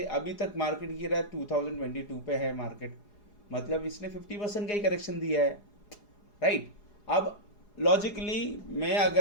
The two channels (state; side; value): late; right; 4.8 ms